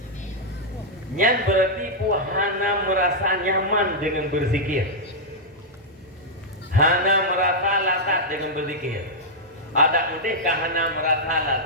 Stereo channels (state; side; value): normal; both; correlation -0.07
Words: Nyan berarti puhana merasa nyaman dengan berzikir. hana merasa lazat dengan berzikir. Ada mungkin hana merasa